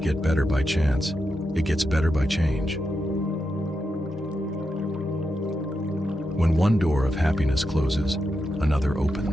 get better by chance, it gets better by change. When one door of happiness closes, another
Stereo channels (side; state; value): both; normal; correlation 0.87